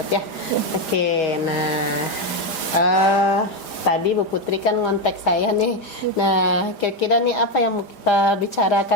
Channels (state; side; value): late; right; 4.9 ms